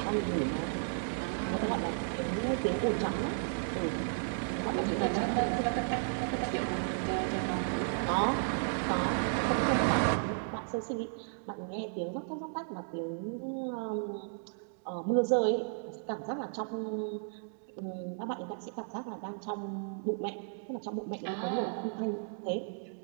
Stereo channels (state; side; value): silent; left; digital silence